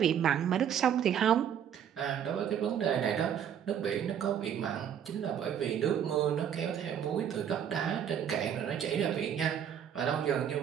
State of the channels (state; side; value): quieter; left; 8.9 dB